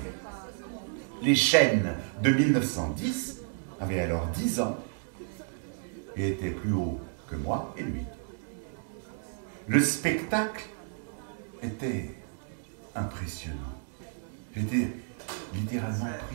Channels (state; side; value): silent; left; 57 dB below the other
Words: Les chênes de 1910 avaient alors 10 ans et étaient plus hauts que moi et lui. Le spectacle était impressionnant. J'étais littéralement